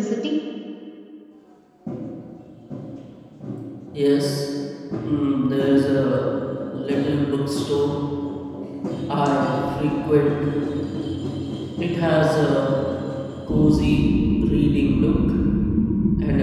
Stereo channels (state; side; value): identical; both; correlation 1.00